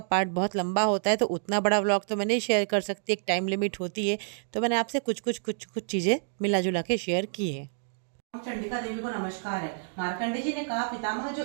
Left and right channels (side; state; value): left; silent; digital silence